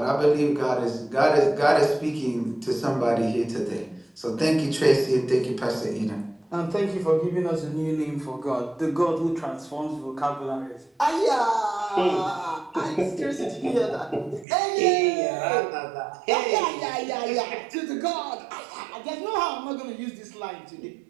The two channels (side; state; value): left; drops out; at 14.5 s